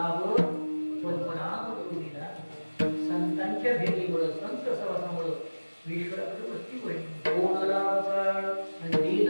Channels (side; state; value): both; inverted; correlation -1.00